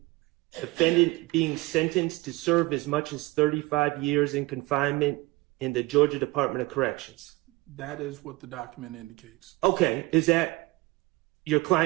defendant being sentenced to serve as much as 35 years in confinement in the Georgia Department of Corrections? That is what the document indicates. Okay, is that your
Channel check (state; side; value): quieter; left; 21.6 dB